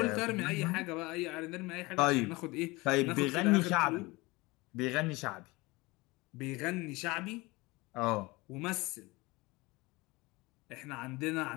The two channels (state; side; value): quieter; right; 23.0 dB